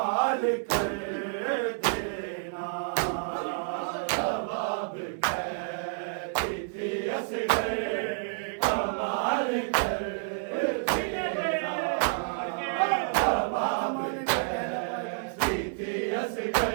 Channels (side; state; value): left; silent; digital silence